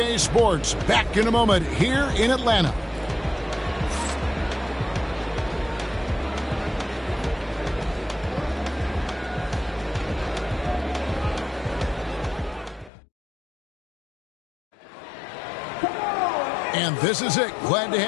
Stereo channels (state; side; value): drops out; right; at 12.9 s